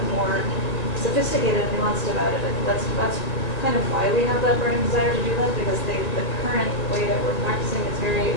more sophisticated and nuanced about it. I think that's kind of why we have that burning desire to do that, because the current way that we're practicing is very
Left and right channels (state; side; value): late; right; 1.8 ms